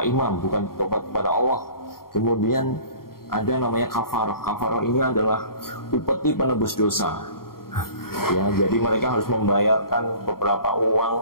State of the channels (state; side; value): late; right; 0.93 ms